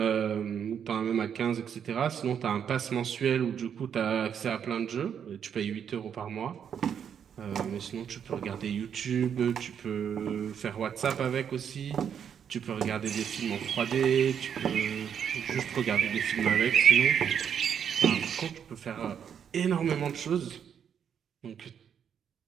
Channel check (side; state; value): left; quieter; 8.1 dB